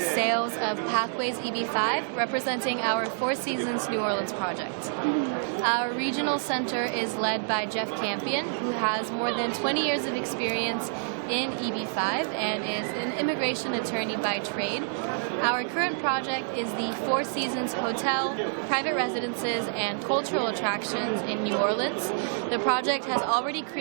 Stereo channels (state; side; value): silent; left; 60 dB below the other